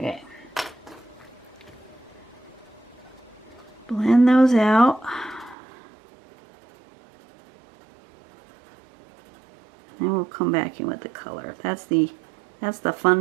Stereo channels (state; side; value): drops out; left; at 5.6 s